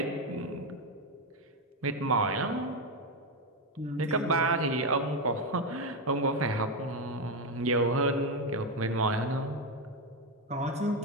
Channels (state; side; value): normal; both; correlation 0.09